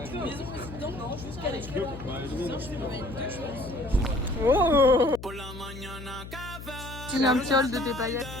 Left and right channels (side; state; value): left; noise; hum, 12 dB below the sound